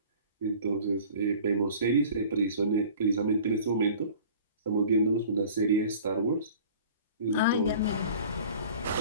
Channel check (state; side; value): inverted; both; correlation -0.45